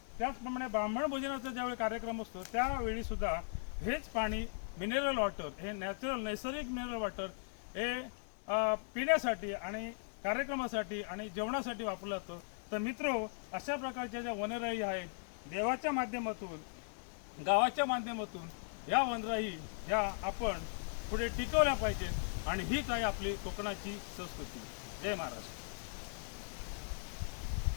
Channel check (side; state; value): right; silent; digital silence